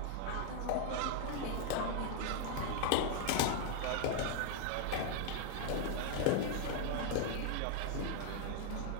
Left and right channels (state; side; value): different; both; correlation 0.00